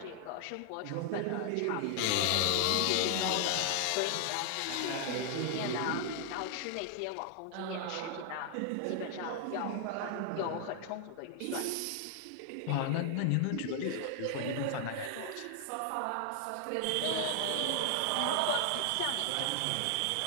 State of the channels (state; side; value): different; both; correlation 0.00